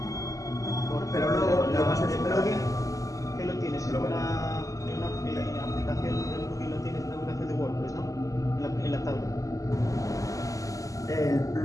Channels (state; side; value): late; right; 0.16 ms